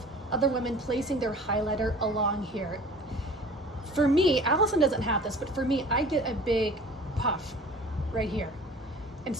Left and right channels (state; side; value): normal; both; correlation 0.45